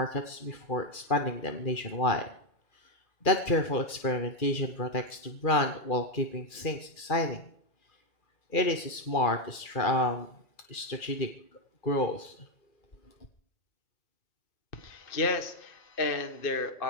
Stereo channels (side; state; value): right; late; 2.4 ms